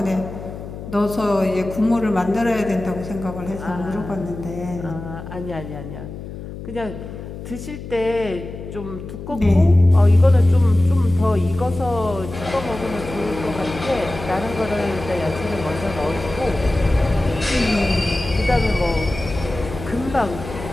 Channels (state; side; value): noise; left; hum, 11 dB below the sound